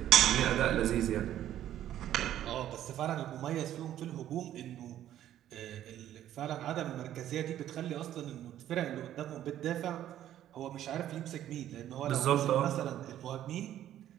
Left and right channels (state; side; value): quieter; left; 11.9 dB